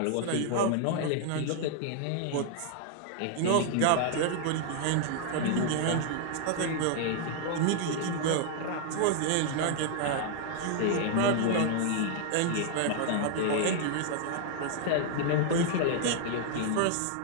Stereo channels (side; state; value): both; different; correlation 0.00